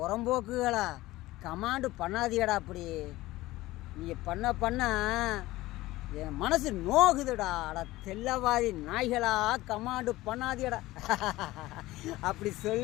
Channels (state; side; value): quieter; right; 17.9 dB